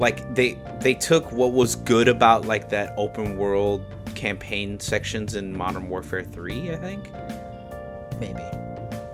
took what was good about like that open world campaign sections in Modern Warfare 3, I think. Maybe.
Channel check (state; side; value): identical; both; correlation 1.00